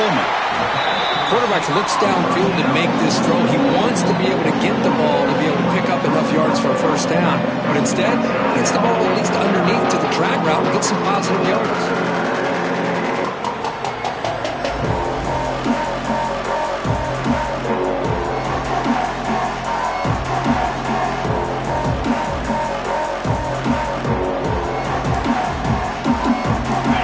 Quarterback looks downfield to make this throw. He wants to be able to get the ball to be able to pick up enough yards for a 1st down. But instead, gets the ball at least underneath to the drag route and gets some positive yards.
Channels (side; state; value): both; identical; correlation 1.00